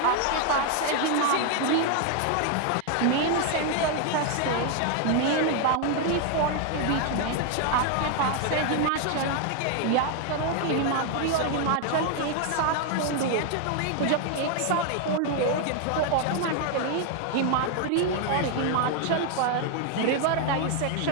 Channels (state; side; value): different; both; correlation 0.00